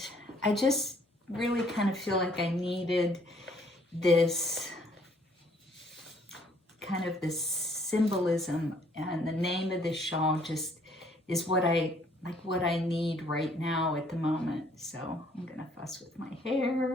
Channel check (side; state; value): both; normal; correlation 0.63